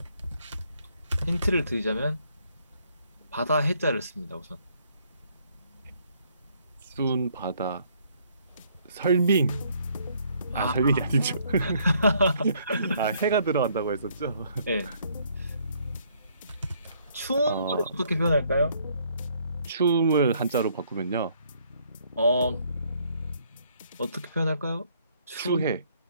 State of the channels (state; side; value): inverted; both; correlation -0.66